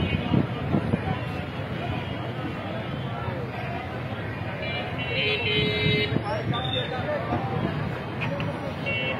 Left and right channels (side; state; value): both; identical; correlation 1.00